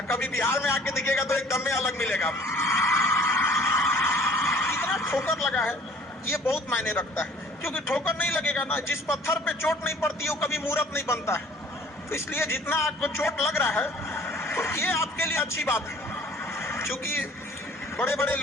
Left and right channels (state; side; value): normal; both; correlation 0.52